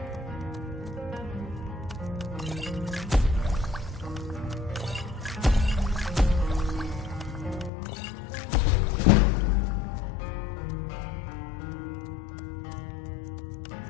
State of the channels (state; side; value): drops out; right; at 7.7 s